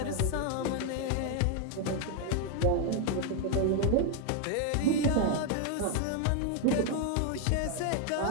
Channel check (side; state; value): both; different; correlation 0.01